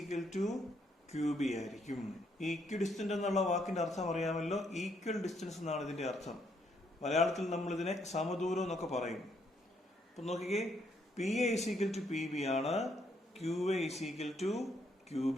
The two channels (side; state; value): both; normal; correlation 0.72